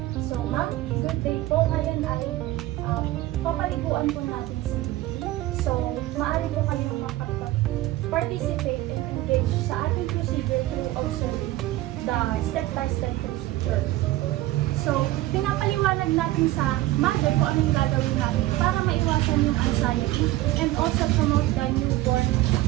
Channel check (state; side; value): quieter; left; 16.4 dB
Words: So, ma'am, good day po. Ngayon ay papaliguan po natin si baby. So, maaari po kayong makapag-participate and engage sa ating procedure through observing the step-by-step procedure. So, pinapaliwanag natin sa mother kung ano yung gagawin natin para maiwasan yung anxiety and also promote the newborn